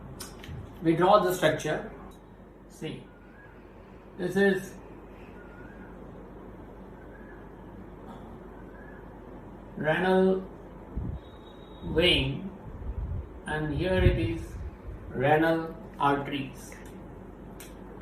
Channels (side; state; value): both; identical; correlation 1.00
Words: We draw the structure. See, this is renal vein, and here it is renal arteries.